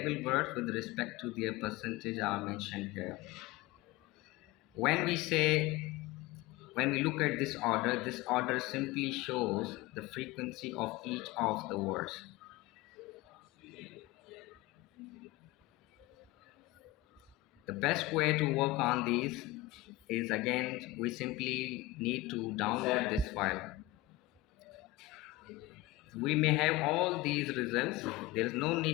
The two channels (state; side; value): quieter; right; 18.0 dB